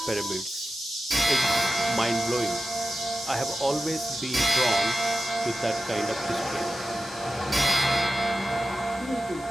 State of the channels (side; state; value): both; normal; correlation 0.94